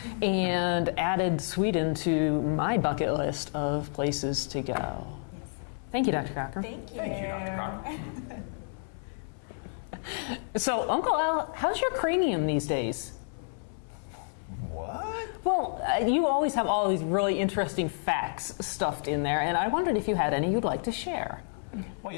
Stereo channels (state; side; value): silent; right; 57 dB below the other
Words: and added Sweden to my bucket list of places to go. yes. Thank you, Dr. Cochran. Thank you. Thank you, Dr. Cochran. So, Uncle Al, how's your cranium these days? What? Well, you always have all these really interesting facts stuffed in there, and I wondered if you had any you'd like to share. Well,